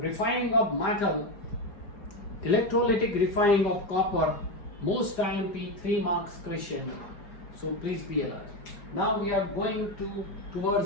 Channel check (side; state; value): right; late; 4.8 ms